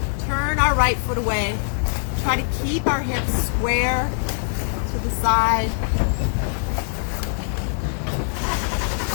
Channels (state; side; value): silent; right; digital silence